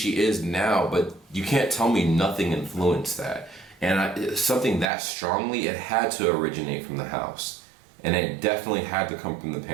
is now, but you can't tell me nothing influenced that. And something that strongly, it had to originate from the house. And it definitely had to come from the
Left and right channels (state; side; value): drops out; left; at 4.9 s